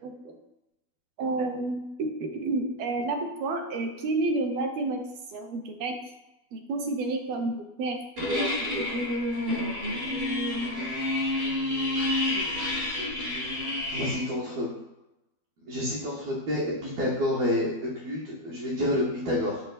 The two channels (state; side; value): late; left; 12 ms